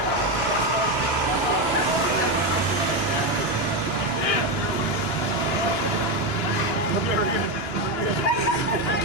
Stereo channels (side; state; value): right; late; 2.9 ms